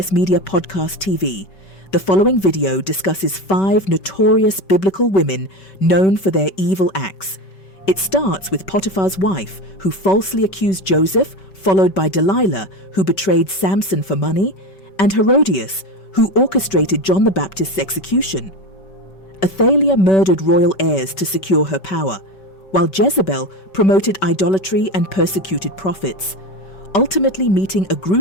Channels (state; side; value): late; right; 5.2 ms